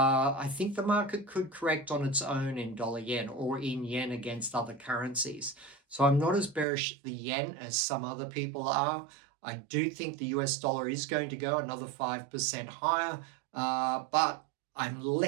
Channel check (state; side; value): drops out; left; at 6.7 s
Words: think the market could correct on its own in dollar yen or in yen against other currencies. So I'm not as bearish the yen as some other people are. I do think the US dollar is going to go another 5% higher, but I'm